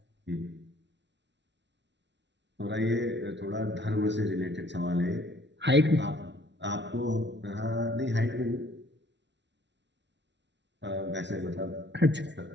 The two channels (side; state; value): left; late; 0.51 ms